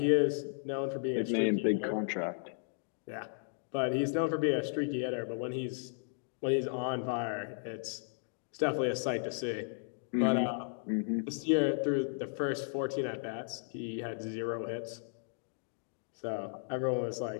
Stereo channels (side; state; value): right; silent; digital silence